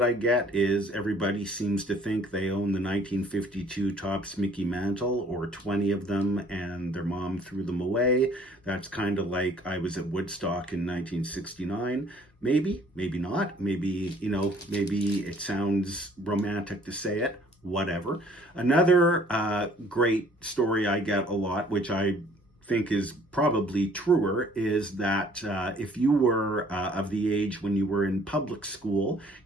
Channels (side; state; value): both; normal; correlation 0.57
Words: I get is everybody seems to think they own the 1952 Topps Mickey Mantle, or 20 of them, and their mom threw them away. That's kind of like I was at Woodstock in 1969. Maybe, maybe not. Maybe, maybe it sounds romantic to say it. Whatever. Another great story I get a lot, which I think is probably truer, is that if you were of the age when you were in public school